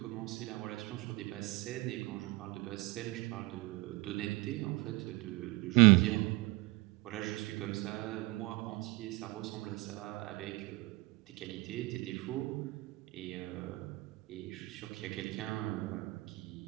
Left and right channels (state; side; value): quieter; left; 22.3 dB